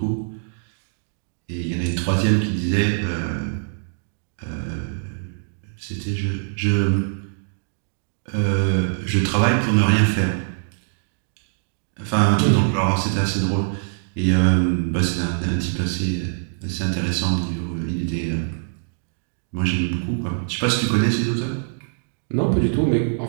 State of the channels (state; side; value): silent; left; digital silence